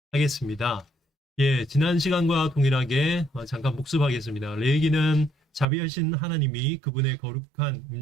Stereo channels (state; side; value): drops out; left; at 5.7 s